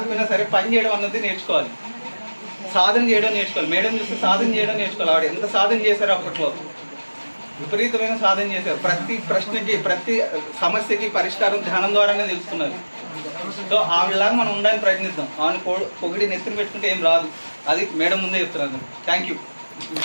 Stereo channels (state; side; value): inverted; both; correlation -1.00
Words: సరే పని చేయడం అన్నది నేర్చుకోవాలి, సాధన చేయడం నేర్చుకోవాలి. మేడం చూస్తే సాధన చేయడం నేర్చుకోవాలి. ఆవిడ ఎంత సాధన చేశారు, అప్పట్లో విపరీతమైన సాధన చేశారు. ప్రతి ప్రశ్నకి ప్రతి సమస్యకి పరిష్కారం ధ్యానం ద్వారానే తెలుసుకున్నారు. సో ఆవిడలాగా మనం ఉండడానికి ప్రయత్నిద్దాం. ఆమెను పొగిడి నెత్తిన పెట్టుకుంటే ఏం రాదు, అది మేడం ముందే చెప్తున్నారు. Thank you.